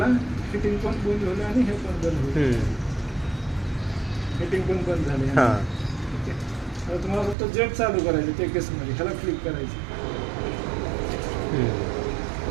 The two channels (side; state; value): left; drops out; at 7.4 s